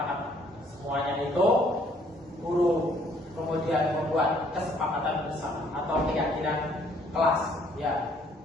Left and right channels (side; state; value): both; normal; correlation 0.63